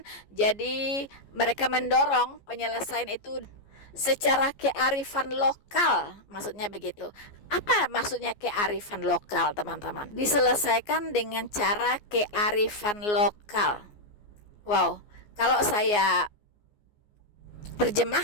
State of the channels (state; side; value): late; right; 14 ms